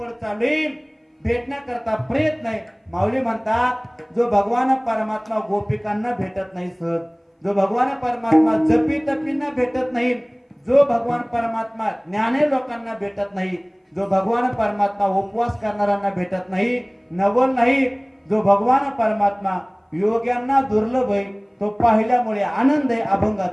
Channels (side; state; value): both; identical; correlation 1.00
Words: चालू आहे, भेटण्याकरता प्रयत्न आहे. माऊली म्हणतात जो भगवान परमात्मा गोपिकांना भेटत नाही सहज, जो भगवान परमात्मा जपी तपींना भेटत नाही, जो भगवान परमात्मा ज्ञाने लोकांना भेटत नाही, जो भगवान परमात्मा उपवास करणाऱ्यांना भेटत नाही, नवल नाही, जो भगवान परमात्मा योग्यांना दुर्लभ आहे, तो पाहिल्यामुळे आनंद आहे.